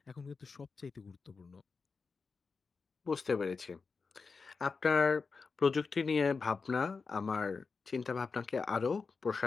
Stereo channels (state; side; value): quieter; right; 4.7 dB